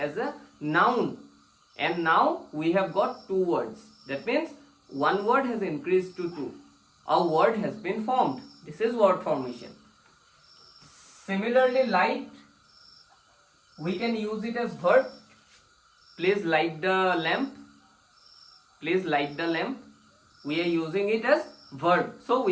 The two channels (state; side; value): identical; both; correlation 1.00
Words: a noun. And now we have got two words. That means one word has increased to two. A word has been formed. This is word formation. Similarly, light, we can use it as verb. Please light the lamp. Please light the lamp. We are using it as verb. So